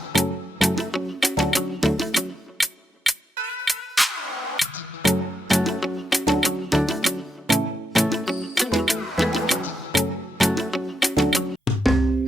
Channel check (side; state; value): both; normal; correlation 0.83